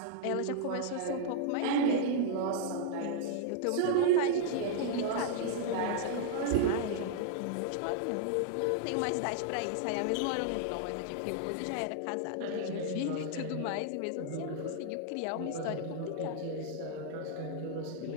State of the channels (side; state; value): both; different; correlation 0.00